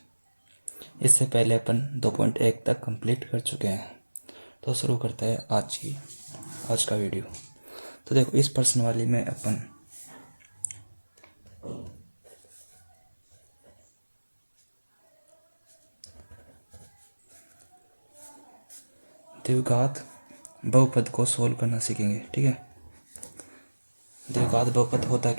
इससे पहले अपन 2.1 तक कंप्लीट कर चुके हैं। तो शुरू करते हैं आज का वीडियो। तो देखो, इस प्रश्न वाली में अपन द्विघात बहुपद को सोल्व करना सीखेंगे। ठीक है, द्विघात बहुपद होता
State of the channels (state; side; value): inverted; both; correlation -1.00